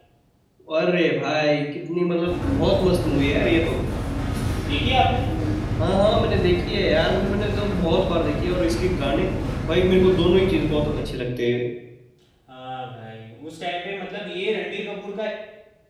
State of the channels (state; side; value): identical; both; correlation 1.00